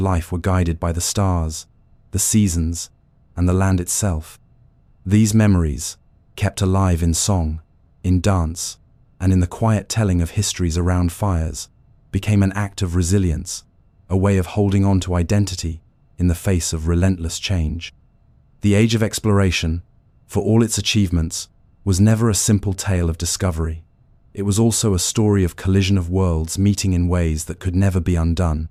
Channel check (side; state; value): both; identical; correlation 1.00